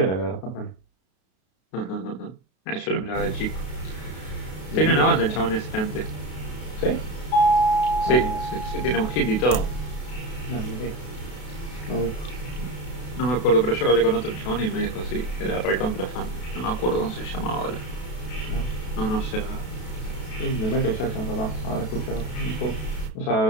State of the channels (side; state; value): right; late; 32 ms